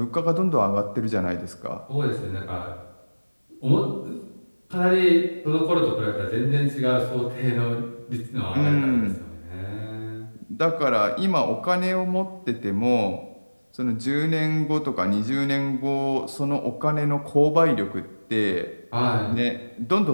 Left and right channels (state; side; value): inverted; both; correlation -1.00